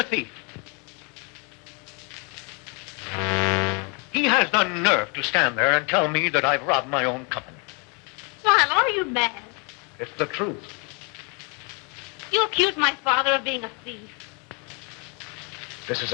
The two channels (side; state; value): right; quieter; 33.8 dB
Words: thief. He has the nerve to stand there and tell me that I've robbed my own company. Lionel, are you mad? It's the truth. You accuse my father of being a thief. This is